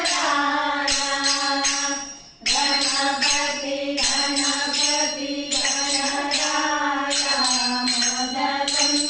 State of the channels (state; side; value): identical; both; correlation 1.00